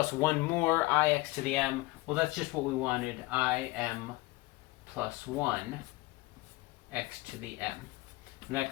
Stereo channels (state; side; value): quieter; right; 21.4 dB